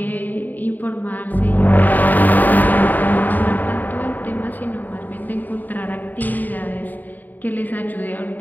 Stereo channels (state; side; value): late; right; 0.086 ms